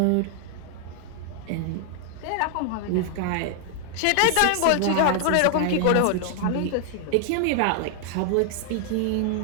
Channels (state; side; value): different; both; correlation 0.00